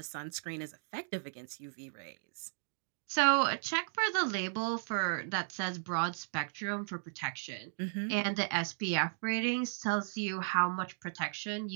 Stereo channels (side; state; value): left; silent; digital silence